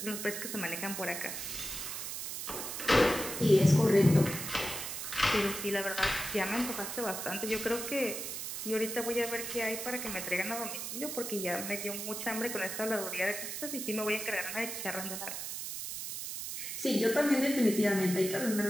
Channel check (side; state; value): right; noise; hiss, 5 dB below the sound